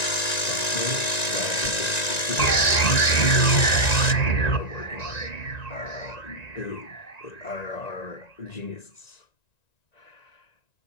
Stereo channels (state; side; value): late; right; 1.9 ms